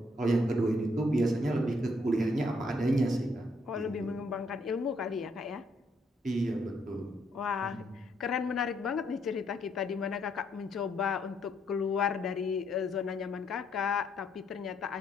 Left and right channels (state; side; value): normal; both; correlation 0.72